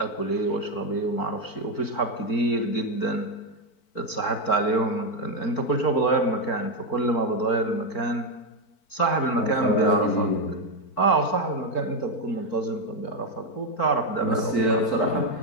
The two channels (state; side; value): late; right; 4.5 ms